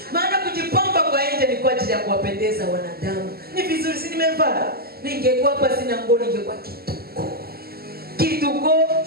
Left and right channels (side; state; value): left; late; 0.45 ms